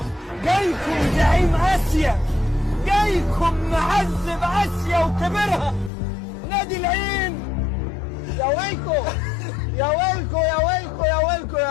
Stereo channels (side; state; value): right; drops out; at 5.9 s